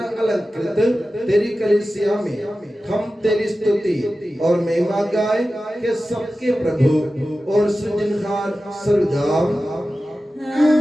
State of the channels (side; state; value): both; normal; correlation 0.94